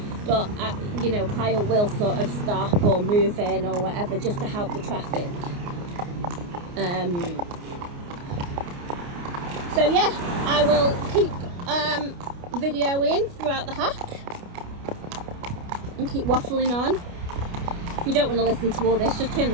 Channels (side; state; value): left; late; 29 ms